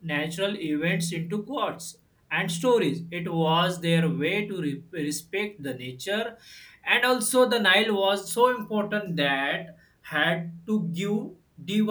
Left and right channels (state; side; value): identical; both; correlation 1.00